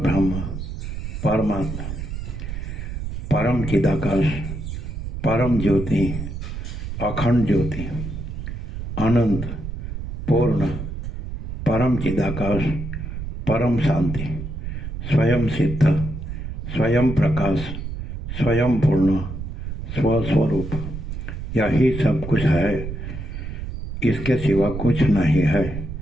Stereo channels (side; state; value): right; noise; rumble, 6 dB below the sound